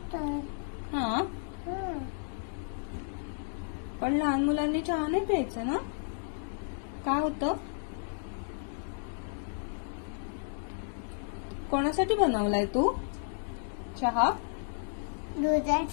हा. पण लहान मुलांनी चहा नाही प्यायचं ना? काय होतं? कोणासाठी बनवलाय तू चहा?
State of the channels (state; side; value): silent; right; digital silence